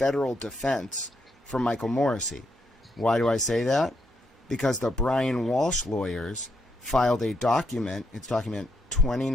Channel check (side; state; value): both; normal; correlation 0.78